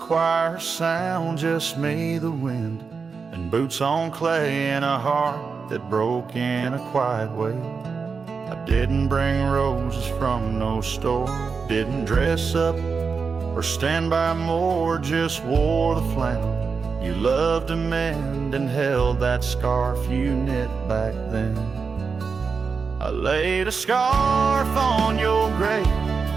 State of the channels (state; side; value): quieter; left; 5.2 dB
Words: sound, just me, the wind, and boots on clay, and a heart that broke in a quiet way. I didn't bring roses from no store, didn't dress up or stand by more, just wore the flannel you loved to mend and held that scarf you knit back then. I laid a scarf on your grave,